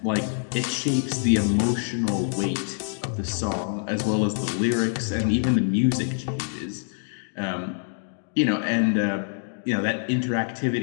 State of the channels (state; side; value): silent; right; digital silence